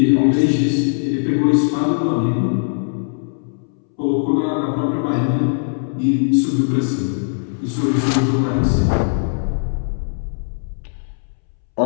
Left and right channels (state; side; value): silent; right; 66 dB below the other